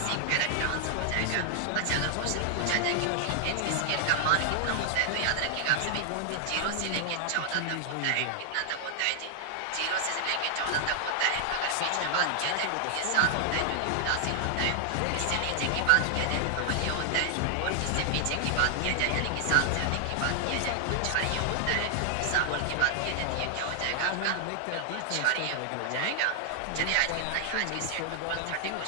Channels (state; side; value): different; both; correlation -0.01